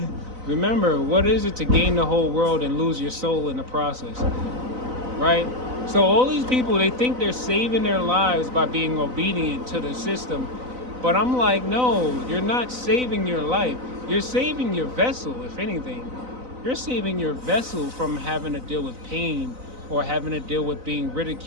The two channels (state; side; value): late; left; 4.0 ms